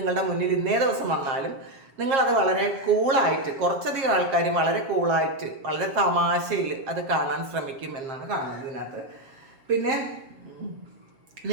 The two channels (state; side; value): late; left; 7.5 ms